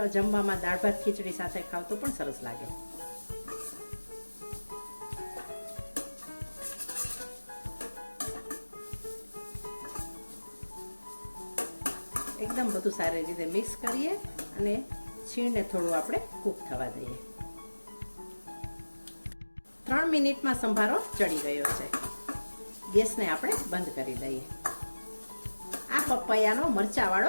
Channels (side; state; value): both; inverted; correlation -1.00